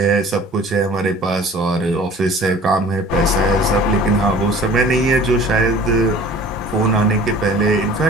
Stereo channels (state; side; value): normal; both; correlation 0.47